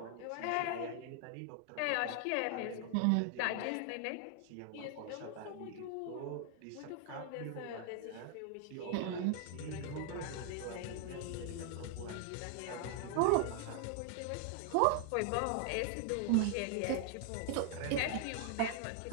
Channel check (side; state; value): both; different; correlation 0.00